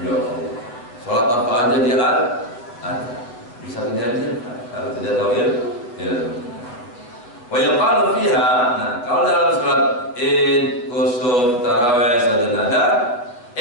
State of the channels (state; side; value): late; right; 8.3 ms